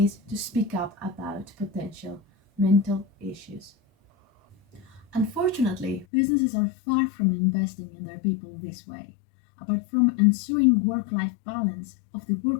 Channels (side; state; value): right; drops out; at 6.1 s